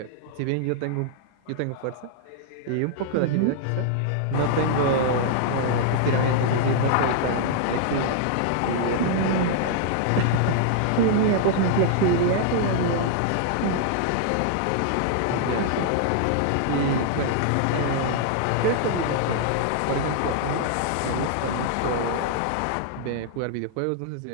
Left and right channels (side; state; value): both; different; correlation -0.01